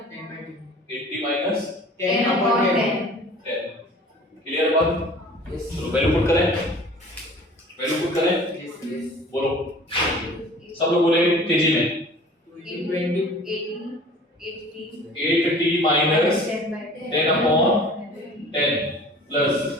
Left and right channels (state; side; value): normal; both; correlation 0.45